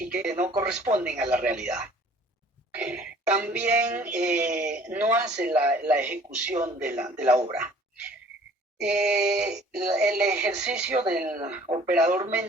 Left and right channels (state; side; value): normal; both; correlation 0.52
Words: que no corresponden a la realidad. También no hace la ejecución de la obra. El ejercicio del operador